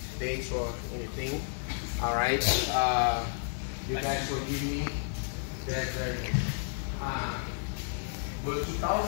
dates or anything, all right, you guys forgive me. That's very good. But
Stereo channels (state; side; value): silent; right; digital silence